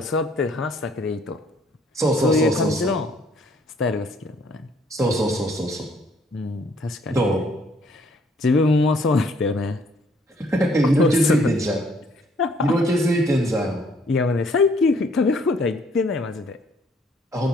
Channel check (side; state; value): both; normal; correlation 0.63